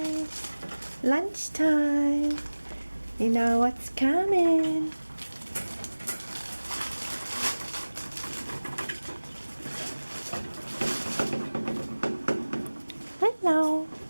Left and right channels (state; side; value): inverted; both; correlation -1.00